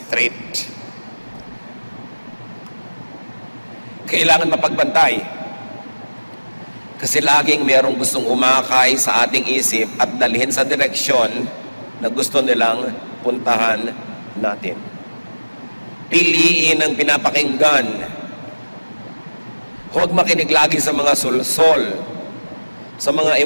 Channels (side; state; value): both; inverted; correlation -1.00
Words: Kailangan mapagbantay. Kasi laging merong gustong umakay sa ating isip at dalhin sa direksyon na gusto nilang puntahan natin. Piliin ang pinapakinggan. Huwag makinig lagi sa mga sulsol, sa mga